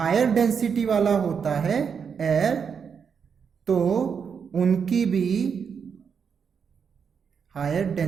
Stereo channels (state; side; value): quieter; left; 6.6 dB